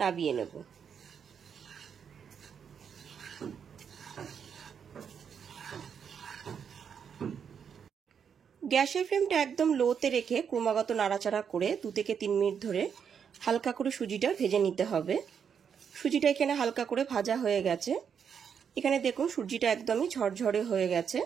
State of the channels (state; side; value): quieter; left; 7.3 dB